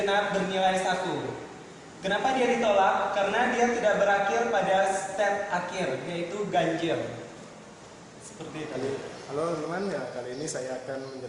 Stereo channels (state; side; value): identical; both; correlation 1.00